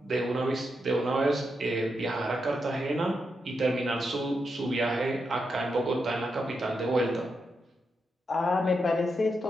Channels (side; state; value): both; normal; correlation 0.84